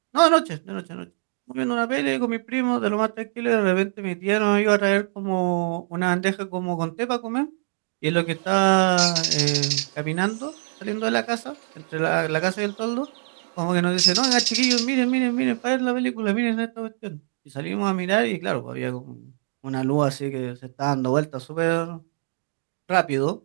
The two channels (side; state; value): left; silent; digital silence